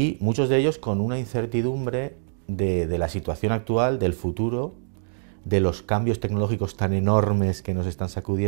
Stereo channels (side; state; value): left; silent; digital silence